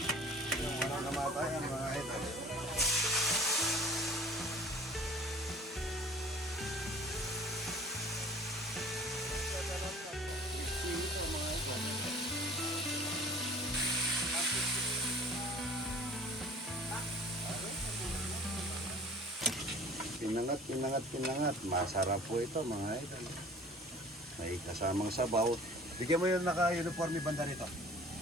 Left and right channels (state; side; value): normal; both; correlation 0.46